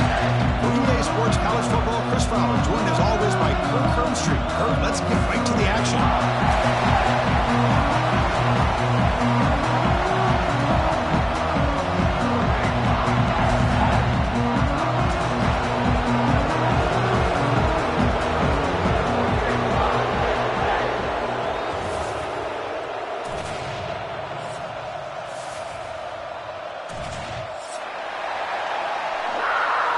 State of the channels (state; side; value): identical; both; correlation 1.00